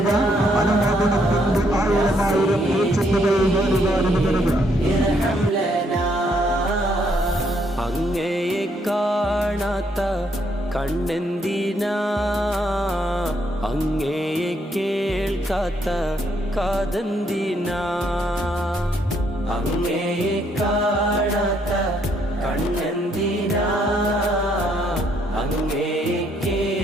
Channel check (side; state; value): both; normal; correlation 0.71